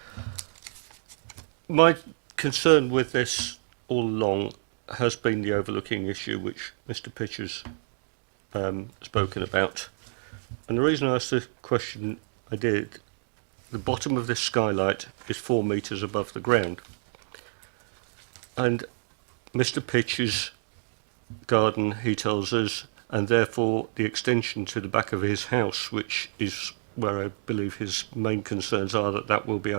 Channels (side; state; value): left; silent; digital silence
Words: My concern with this all along has been the overlooking issue which Mr. Pitcher's spoken about. And the reason I asked the question I did, the bottom of this skylight is 4 metres above the ground. And Mr. Pitcher's garden, he tells us, and therefore the extension to the back of his house, which is where I believe his main concerns are, that will be